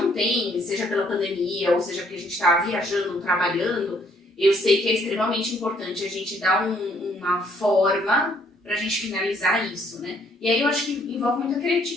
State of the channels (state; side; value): normal; both; correlation 0.66